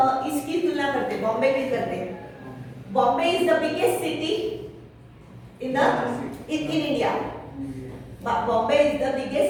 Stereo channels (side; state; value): both; identical; correlation 1.00